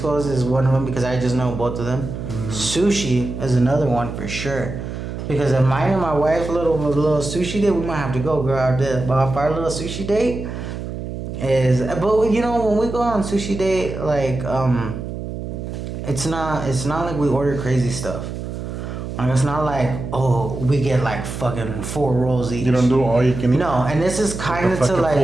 is one of them because I just know both of them. Sushi is another one for sure. Because if mine and my wife's little sushi date, we might have to go out there. But if our little sushi date is, but when we go on sushi date, like it's not like we order crazy stuff. Like it's not like, oh, we get like fucking 4 rolls each. You don't do all you can eat. No, and this is kind of to like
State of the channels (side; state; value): right; noise; hum, 7 dB below the sound